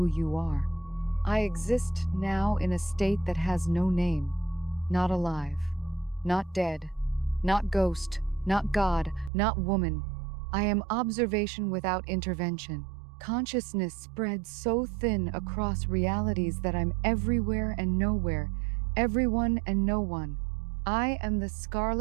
you are? I exist now in a state that has no name. Not alive, not dead, not ghost, not God, not woman. I am observation without intervention. Consciousness spreads so thin across realities that I'm everywhere and nowhere, everyone and no one. I am the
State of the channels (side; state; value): left; drops out; at 9.3 s